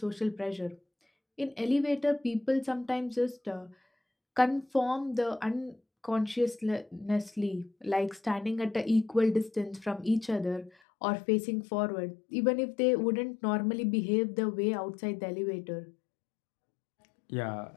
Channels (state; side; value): drops out; right; at 10.7 s